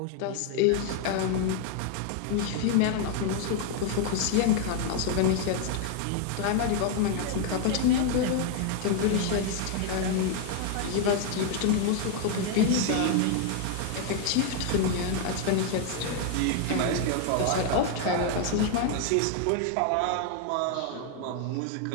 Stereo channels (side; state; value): both; different; correlation 0.00